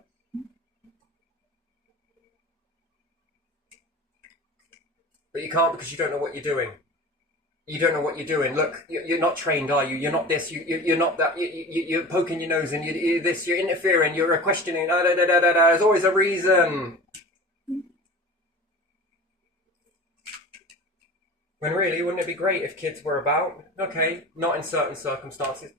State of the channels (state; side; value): normal; both; correlation 0.36